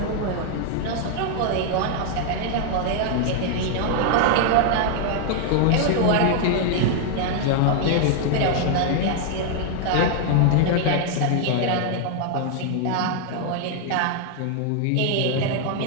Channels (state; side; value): different; both; correlation 0.00